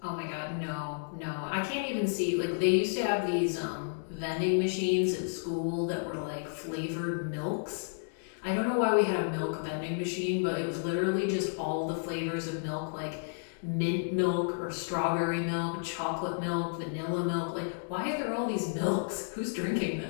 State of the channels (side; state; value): right; silent; digital silence